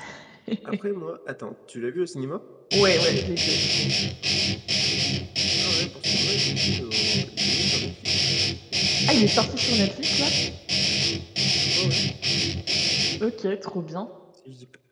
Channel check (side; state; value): both; identical; correlation 1.00